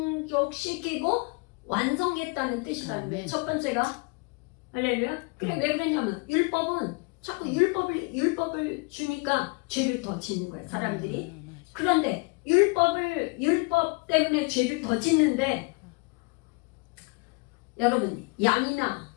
완성했다는 뜻이라는 거예요. 첫 번째가 할렐루야. 그래, 왜 그러냐면 율법은 자꾸 율법을 주니까 죄를 더 짓는 거예요, 사람들이. 그런데 율법 때문에 죄를 더 짓는데, 여러분, 양이나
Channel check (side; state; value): right; quieter; 30.5 dB